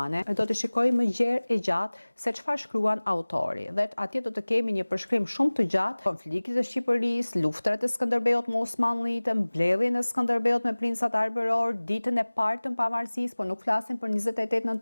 do të shikojmë më gjerë e gjatë se çfarë shkruan autori. Dhe atje do të kemi një përshkrim shumë të gjatë konfliktit të Shqipërisë, luftrat e Skënderbeut me Osmanlitë, mbledhjen e Skënderbeut me princat arbëror, ditën e parë të pavarësisë, por nuk flasim për 28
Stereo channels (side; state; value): both; inverted; correlation -1.00